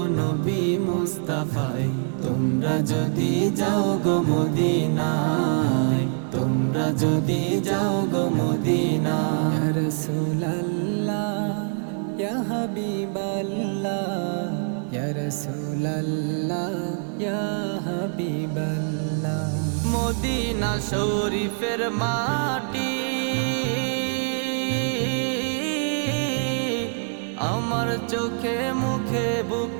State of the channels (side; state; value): left; silent; 57 dB below the other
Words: নবী মুস্তাফায় তোমরা যদি যাও গো মদিনায় তোমরা যদি যাও গো মদিনায় ইয়া রাসূলুল্লাহ ইয়া হাবিবাল্লাহ ইয়া রাসূলুল্লাহ ইয়া হাবিবাল্লাহ মদিনা শরীফের মাটি আমার চোখে মুখে